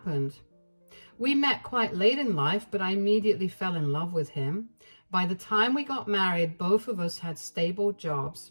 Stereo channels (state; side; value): inverted; both; correlation -1.00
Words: We met quite late in life, but I immediately fell in love with him. By the time we got married, both of us had stable jobs.